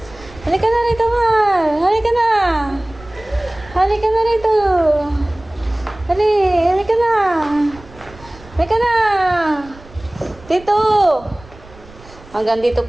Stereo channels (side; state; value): right; noise; rumble, 21 dB below the sound